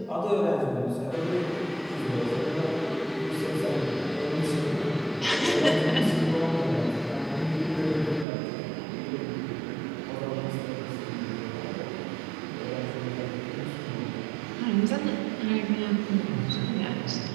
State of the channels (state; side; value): drops out; left; at 8.2 s